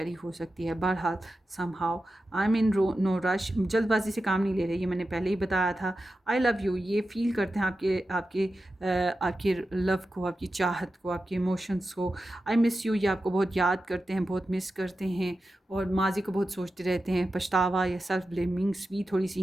हो सकती है। बहरहाल somehow I am in no rush, जल्दबाजी से काम नहीं ले रहे, ये मैंने पहले ही बताया था। आई लव यू, ये फील करते हैं आपके लव को, आपकी चाहत को, आपके इमोशंस को। आई मिस यू, ये आपको बहुत याद करते हैं, बहुत मिस करते हैं और माजी को बहुत सोचते रहते हैं। पछतावा या सेल्फ ब्लेमिंग्स भी थोड़ी सी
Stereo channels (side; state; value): both; normal; correlation 0.92